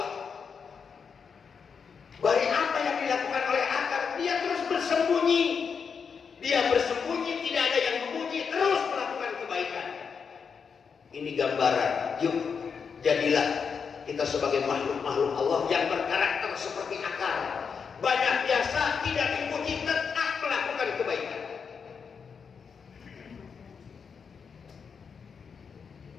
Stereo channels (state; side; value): quieter; right; 6.1 dB